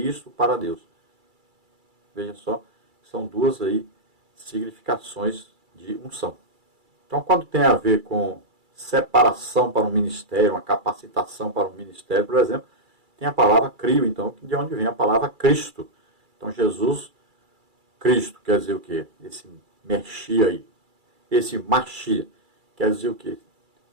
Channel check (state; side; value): late; left; 2.3 ms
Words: para Deus. Veja só, são duas aí significações de unção. Então, quando tem a ver com separação para um ministério, uma capacitação para um ministério, por exemplo, tem a palavra crio, então, de onde vem a palavra Cristo. Então, Jesus, Cristo, quer dizer o quê? Esse Mexia aí, esse Machia, quer dizer o quê?